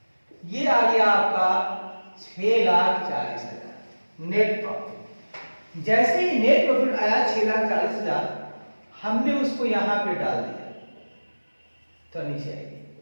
ये आ गया आपका 6,40,000 नेट प्रॉफिट। जैसे ही नेट प्रॉफिट आया 6,40,000, हमने उसको यहां पे डाल दिया, तो नीचे आएगी,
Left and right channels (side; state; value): both; inverted; correlation -1.00